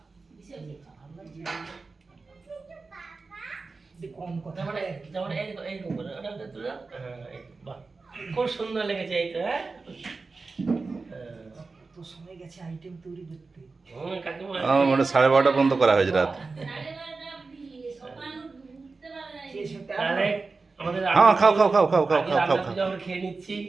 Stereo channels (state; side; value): quieter; left; 4.0 dB